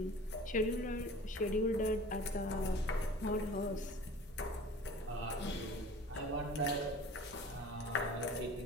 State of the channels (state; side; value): normal; both; correlation 0.43